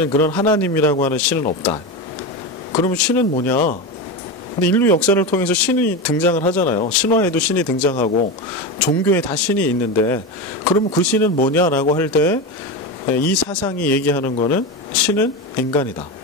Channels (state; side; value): normal; both; correlation 0.19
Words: 그런 하나님이라고 하는 신은 없다. 그러면 신은 뭐냐? 근데 인류 역사를 통해서 신이 등장을 하잖아요. 신화에도 신이 등장하고 종교에 다 신이 있는데, 그러면 그 신은 뭐냐라고 할 때 이 사상이 얘기하는 거는 신은 인간이다.